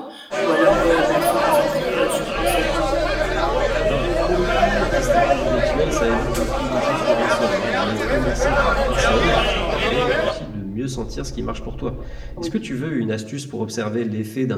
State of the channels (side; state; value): both; identical; correlation 1.00